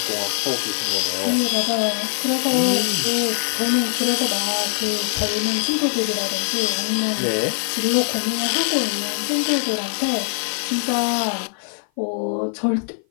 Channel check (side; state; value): right; silent; 55 dB below the other